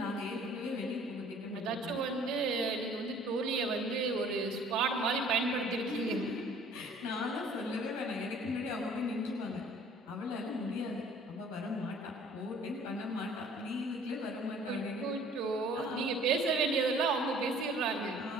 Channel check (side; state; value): both; normal; correlation 0.53